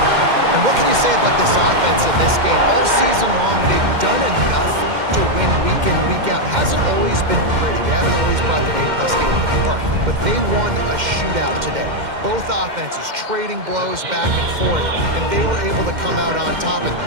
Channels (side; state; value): left; late; 2.1 ms